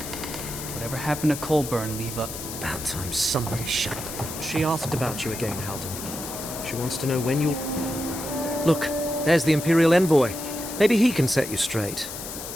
Whatever happened to Colburn, leave up. About time somebody shut up. She asked about you again, Halden. She wants to know when you'll... Look, there's the Imperial Envoy. Maybe he can set you straight.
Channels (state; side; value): noise; left; hiss, 9 dB below the sound